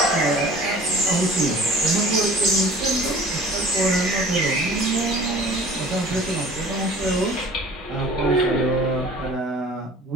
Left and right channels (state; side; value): normal; both; correlation 0.46